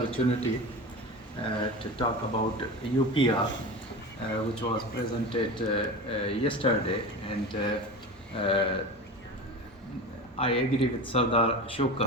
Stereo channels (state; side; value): normal; both; correlation 0.29